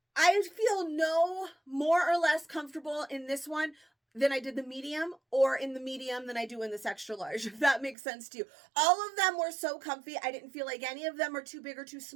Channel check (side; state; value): left; drops out; at 8.0 s